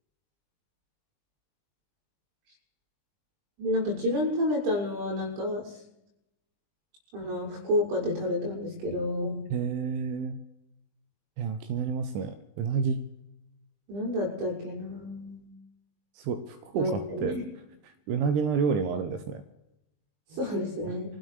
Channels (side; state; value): left; late; 20 ms